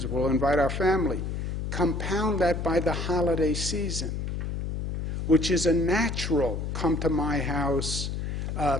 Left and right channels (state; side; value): noise; left; hum, 3 dB below the sound